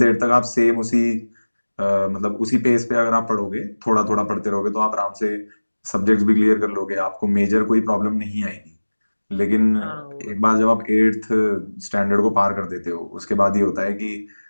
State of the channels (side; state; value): both; inverted; correlation -1.00